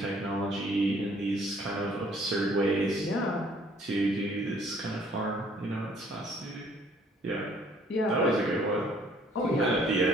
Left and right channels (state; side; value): normal; both; correlation 0.60